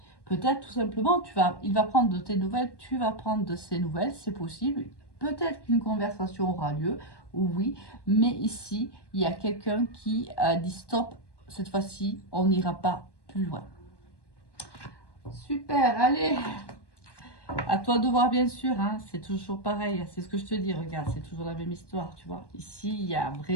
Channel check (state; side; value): late; right; 1.1 ms